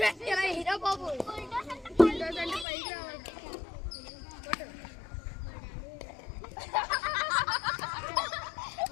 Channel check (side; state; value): right; drops out; at 2.7 s